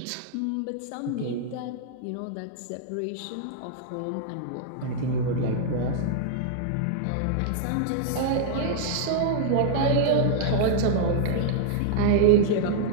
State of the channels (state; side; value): different; both; correlation -0.01